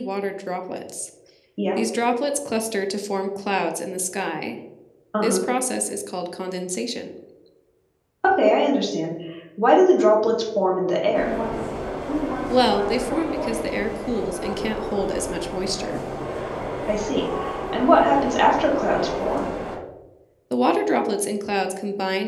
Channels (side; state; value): both; identical; correlation 1.00